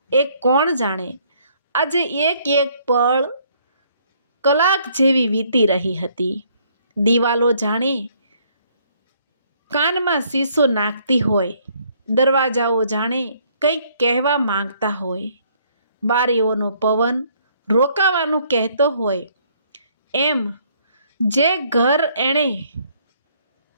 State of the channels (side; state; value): both; inverted; correlation -0.65